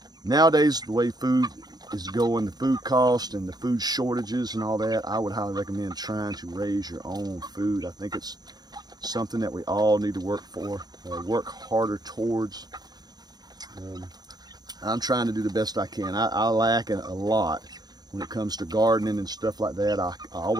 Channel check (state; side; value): late; left; 0.19 ms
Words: nowadays, the way food is going, the food cost and the food shortages and all that, I would highly recommend trying to raise your own food. I think it's something that we all need to work for, work harder towards. I'm trying to do the best I can. I lack a lot when it comes to gardening and stuff like that. I